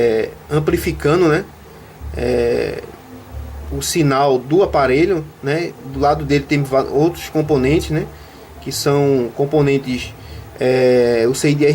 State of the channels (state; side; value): identical; both; correlation 1.00